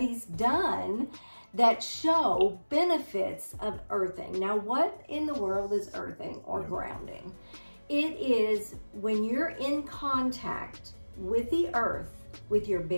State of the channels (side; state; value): both; inverted; correlation -1.00